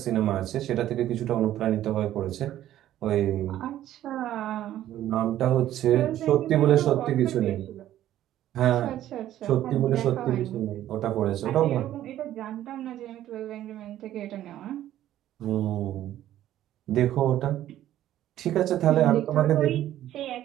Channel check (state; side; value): quieter; left; 12.7 dB